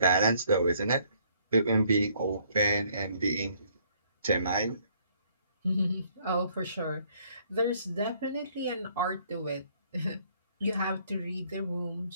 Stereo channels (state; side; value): inverted; both; correlation -0.64